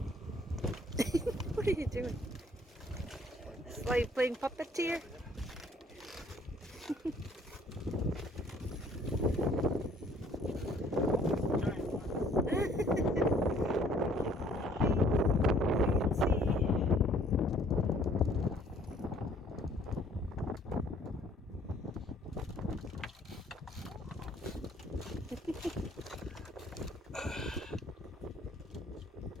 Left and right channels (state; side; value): normal; both; correlation 0.59